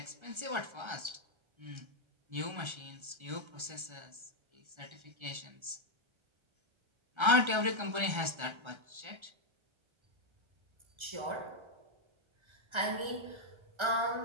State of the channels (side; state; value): left; late; 1.3 ms